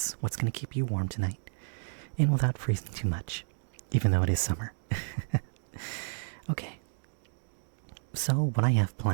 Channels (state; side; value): silent; left; digital silence